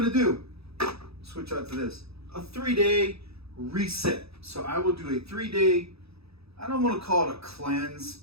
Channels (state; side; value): late; left; 0.78 ms